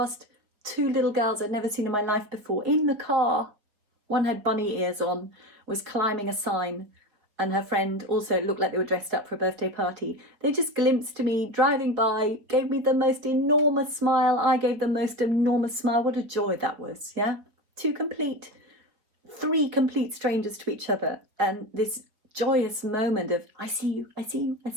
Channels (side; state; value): left; late; 4.8 ms